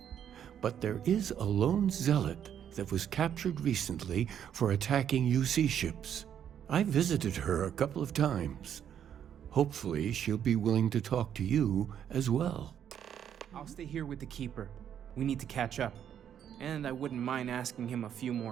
but there is a lone zealot that was captured recently for attacking UC ships. I visited her a couple of times. Hopefully she'll be willing to talk to you as well. I'll stay here with the Keeper. We need to catch up. And I wouldn't mind asking him a few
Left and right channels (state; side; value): quieter; left; 9.2 dB